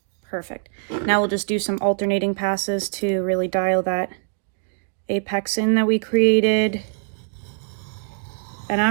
Perfect. Now we'll just do some alternating passes to really dial that apex in that we created. And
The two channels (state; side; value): silent; left; digital silence